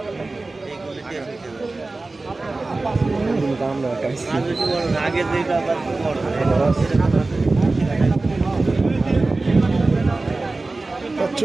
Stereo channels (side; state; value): left; quieter; 3.3 dB